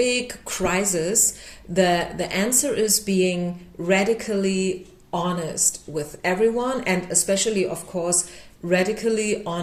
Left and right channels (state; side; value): identical; both; correlation 1.00